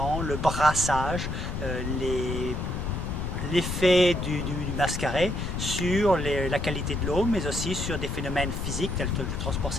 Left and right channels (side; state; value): left; noise; rumble, 3 dB below the sound